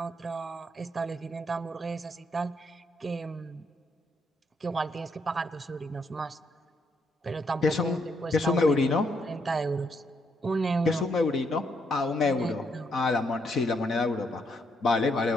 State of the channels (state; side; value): normal; both; correlation 0.75